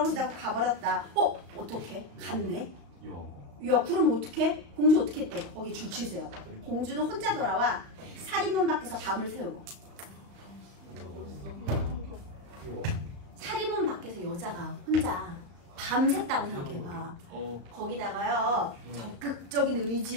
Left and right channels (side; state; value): left; late; 35 ms